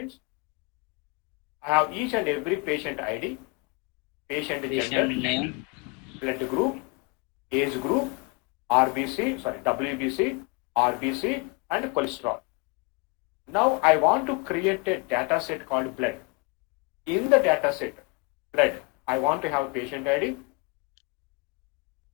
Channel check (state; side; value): quieter; right; 28.8 dB